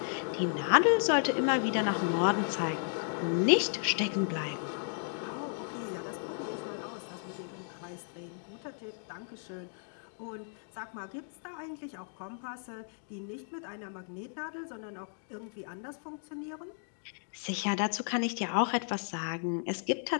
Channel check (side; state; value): right; silent; digital silence